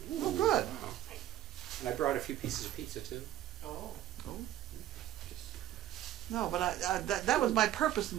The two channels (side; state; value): left; quieter; 13.0 dB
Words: Oh, good. Wow. And I brought a few pieces of pizza too. Oh. No, but that was my purpose in